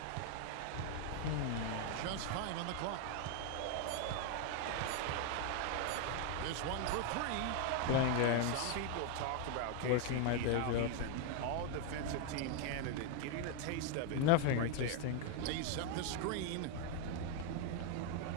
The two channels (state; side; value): different; both; correlation 0.01